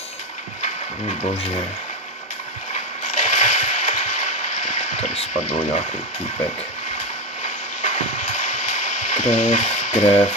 Bože. Tady spadl nějaký týpek. Krev,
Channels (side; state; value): both; normal; correlation 0.16